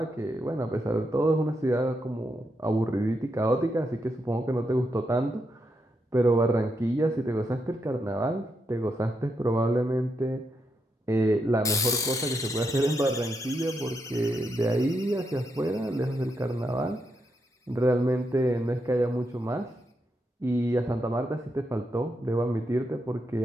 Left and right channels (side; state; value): both; normal; correlation 0.82